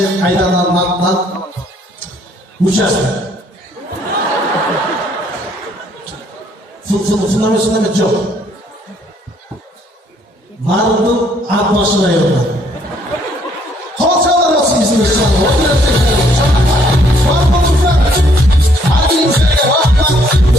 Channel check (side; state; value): both; normal; correlation 0.66